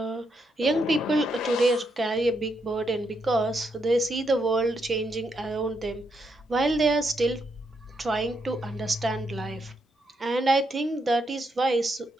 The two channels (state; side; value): normal; both; correlation 0.79